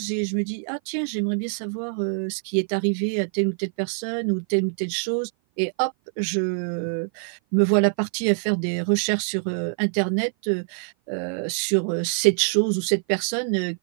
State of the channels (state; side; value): silent; left; 55 dB below the other